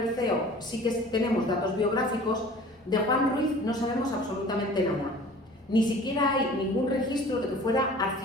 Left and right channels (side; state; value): both; normal; correlation 0.46